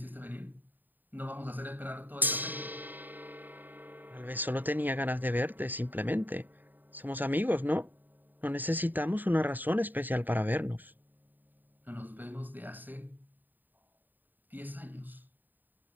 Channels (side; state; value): left; late; 0.089 ms